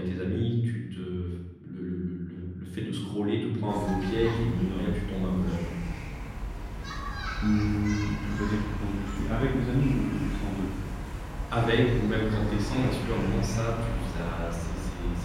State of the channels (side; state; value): both; identical; correlation 1.00